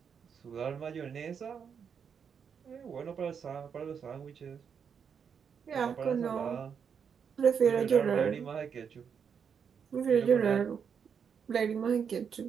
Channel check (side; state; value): left; quieter; 7.0 dB